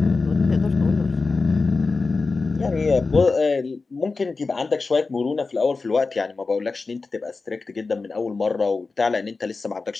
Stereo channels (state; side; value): quieter; right; 4.0 dB